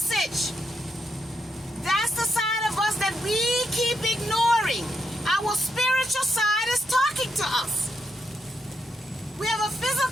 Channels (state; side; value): normal; both; correlation 0.81